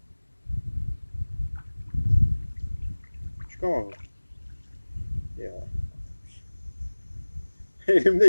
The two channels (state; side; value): inverted; both; correlation -1.00